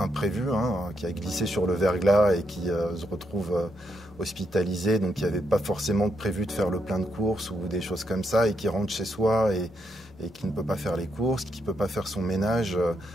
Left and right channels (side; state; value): both; normal; correlation 0.79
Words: qui a glissé sur le verglas et qui se retrouve hospitalisé, donc qui n'avait pas forcément prévu de faire le plein de courses ou des choses comme ça, et qui rentre chez soi et qui ne peut pas faire les courses, qui ne peut pas faire son ménage.